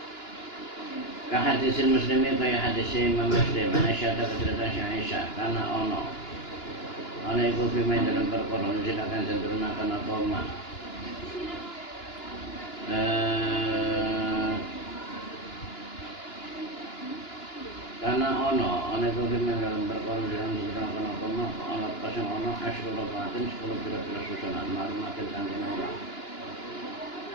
Ka hadisil muslimin kaya hadis Imam Muslim nasyata kecerdasan Aisyah karena ono iku pimen dalam perkara silakan cenderunaken apa mah karena ono iku pimen dalam perkara cenderunaken apa mah ana pasang ono asyru rabatin 10 pira-pira susunan maklumatin kangge ora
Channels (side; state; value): right; late; 2.9 ms